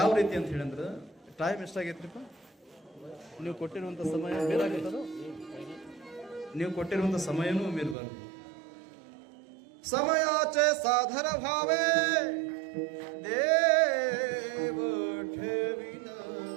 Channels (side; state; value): left; drops out; at 8.0 s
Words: ರೀತಿ ಅಂತ ಹೇಳಿದ್ರೆ, ಟೈಮ್ ಎಷ್ಟಾಗೈತ್ರಿಪ್ಪ? ನೀವು ಕೊಟ್ಟಿರುವಂಥ ಸಮಯ ಮೇಲಾಗುತ್ತದೋ? ನೀವು ಕೊಟ್ಟಿರುವಂಥ ಸಮಯನೂ ಮೀರಬಾರ್ದು. ಸಮಯಾಚೆ ಸಾಧನ ಭಾವೇ ದೇವ ಠೇವಿನ